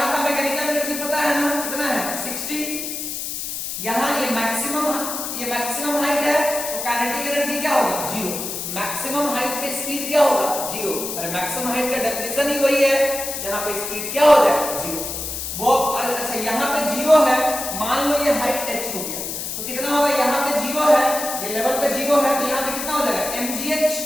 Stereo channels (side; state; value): left; noise; hiss, 5 dB below the sound